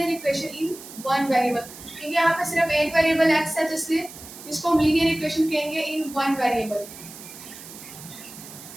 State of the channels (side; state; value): right; noise; hiss, 15 dB below the sound